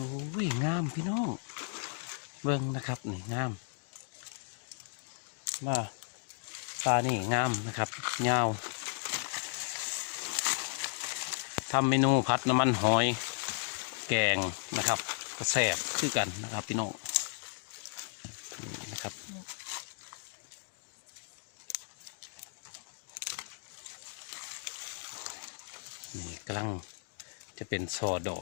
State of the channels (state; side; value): silent; right; digital silence